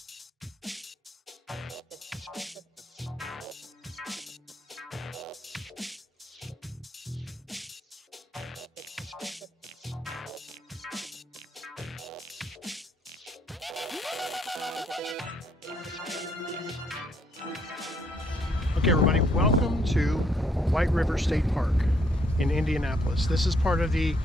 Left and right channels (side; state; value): both; normal; correlation 0.70